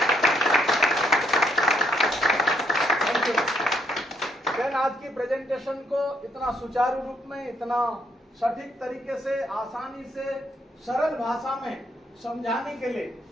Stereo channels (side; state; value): both; normal; correlation 0.73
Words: Thank you. देन आज की प्रेजेंटेशन को इतना सुचारू रूप में, इतना सटीक तरीके से, आसानी से, सरल भाषा में समझाने के लिए